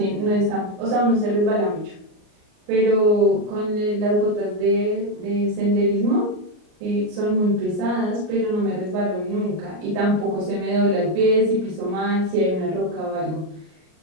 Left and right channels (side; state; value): left; late; 38 ms